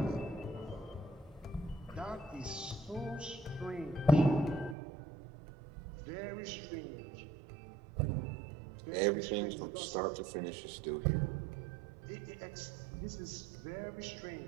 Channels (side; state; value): left; drops out; at 4.8 s